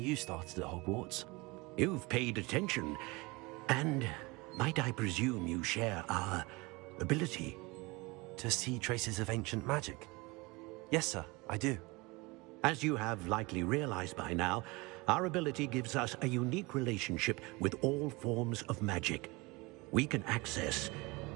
started at Hogwarts. You've paid attention, and might I presume you share our ability? To see traces of ancient magic? Yes, sir, I do. As you have likely realized by now, our ability gives us a unique relationship with all forms of magic. We can access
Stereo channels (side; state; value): left; quieter; 24.5 dB